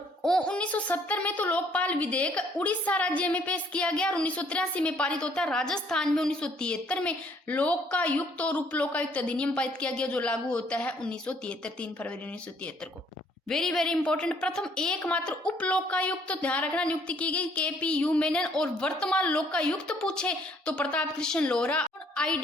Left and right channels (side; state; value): both; normal; correlation 0.63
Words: 1970 में तो लोकपाल विधेयक उड़ीसा राज्य में पेश किया गया, और 1983 में पारित होता है। राजस्थान में 1973 में लोकायुक्त और उप लोकायुक्त अधिनियम पारित किया गया, जो लागू होता है 1973, 3 फरवरी 1973 को। वेरी वेरी इंपॉर्टेंट, प्रथम एकमात्र उप लोकायुक्त, तो ध्यान रखना, नियुक्ति की गई KPU मेनन। और वर्तमान लोकायुक्त पूछे तो प्रताप कृष्ण लोहरा,